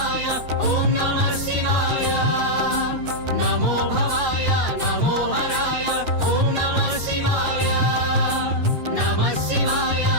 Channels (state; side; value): late; left; 6.6 ms